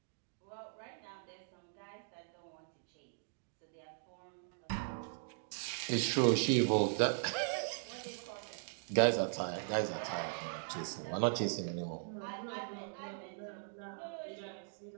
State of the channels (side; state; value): left; silent; digital silence